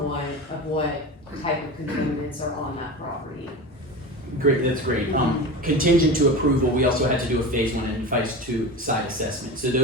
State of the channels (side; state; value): both; normal; correlation 0.29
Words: of what type of contaminants are on that property. Great, that's great. Contingent to approval, we also had to do a phase 1 and phase 2 site assessment. So